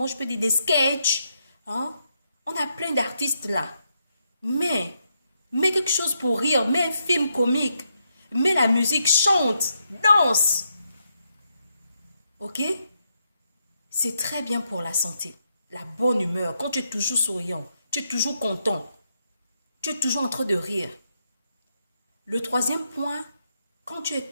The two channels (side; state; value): both; inverted; correlation -0.81